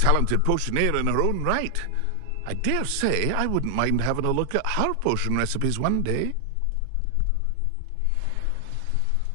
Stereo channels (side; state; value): both; different; correlation 0.00